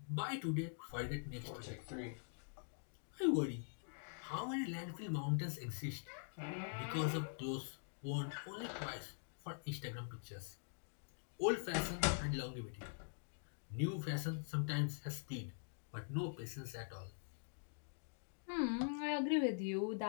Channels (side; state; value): right; silent; digital silence